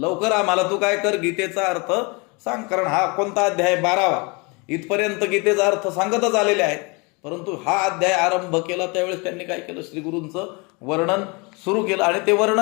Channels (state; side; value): quieter; right; 29.3 dB